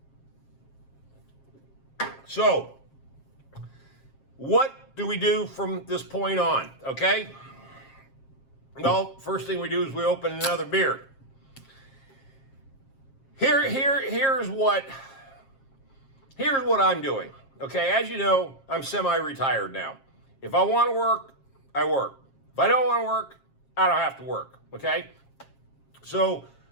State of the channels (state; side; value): late; right; 7.4 ms